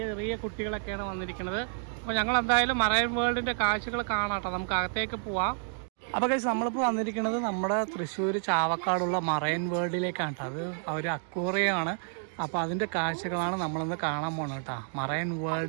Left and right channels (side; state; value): left; silent; 58 dB below the other